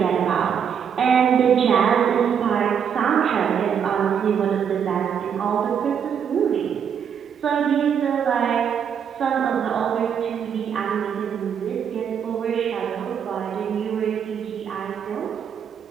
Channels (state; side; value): quieter; left; 7.8 dB